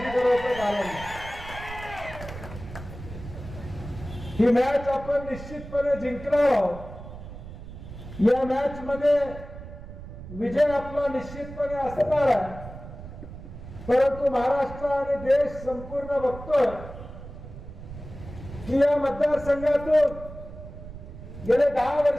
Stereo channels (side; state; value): right; noise; rumble, 13 dB below the sound